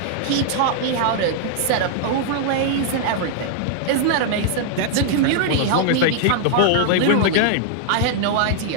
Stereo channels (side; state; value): both; different; correlation -0.01